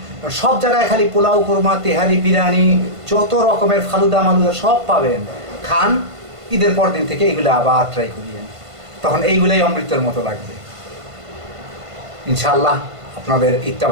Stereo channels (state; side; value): late; left; 1.5 ms